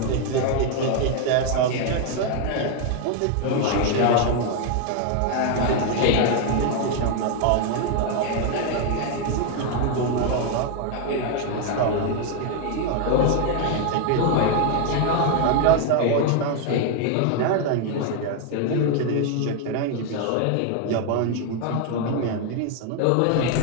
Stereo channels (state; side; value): different; both; correlation 0.00